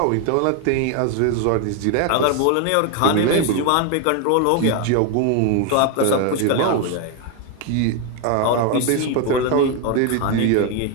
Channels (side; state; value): both; different; correlation 0.01